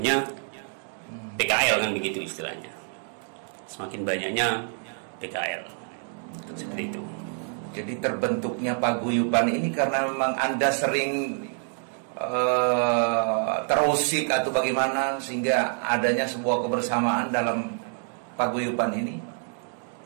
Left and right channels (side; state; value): left; silent; 55 dB below the other